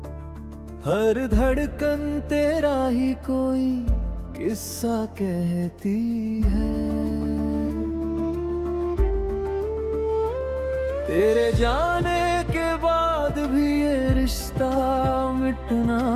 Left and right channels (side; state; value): both; identical; correlation 1.00